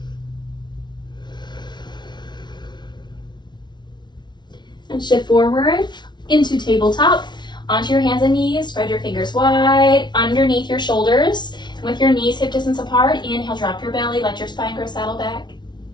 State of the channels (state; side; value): late; right; 0.21 ms